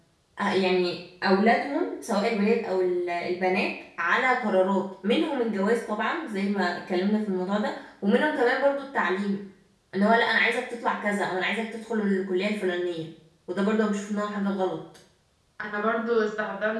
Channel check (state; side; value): identical; both; correlation 1.00